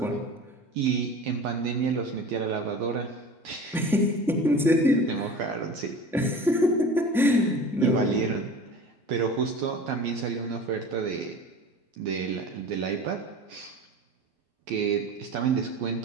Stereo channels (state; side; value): normal; both; correlation 0.37